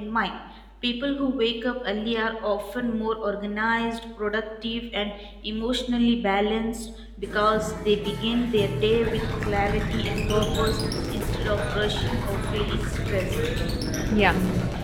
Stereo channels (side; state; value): both; identical; correlation 1.00